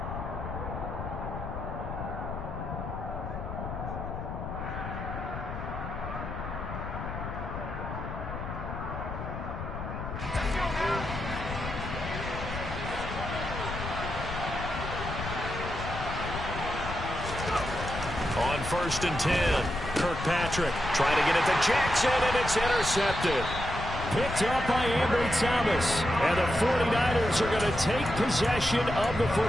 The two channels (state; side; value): noise; left; rumble, 7 dB below the sound